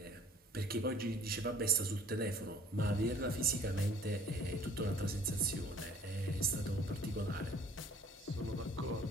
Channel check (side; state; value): both; normal; correlation 0.54